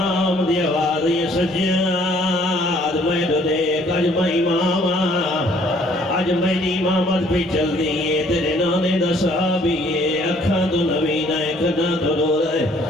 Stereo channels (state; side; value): normal; both; correlation 0.61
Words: دی آواز یہ سجاد میں دو دیکھ اج میں امام اج میری امامت بھی چل دیئے تیرے نانے دا صحابیے اکھاں تو نبینہ کنا تو رو رہے